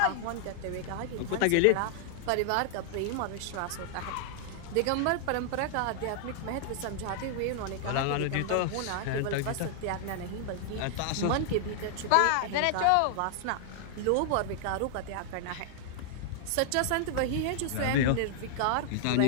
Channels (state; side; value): different; both; correlation 0.00